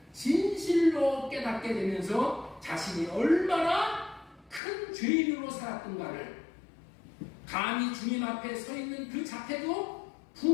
진실로 깨닫게 되면서 자신이 얼마나 큰 죄인으로 살았던가를 감히 주님 앞에 서 있는 그 자태도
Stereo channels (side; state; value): right; drops out; at 4.6 s